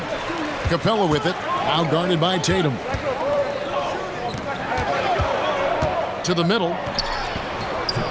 Capella with it, now guarded by Tatum. To the middle.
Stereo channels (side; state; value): both; identical; correlation 1.00